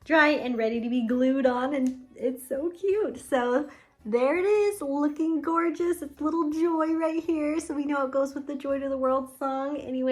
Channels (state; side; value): identical; both; correlation 1.00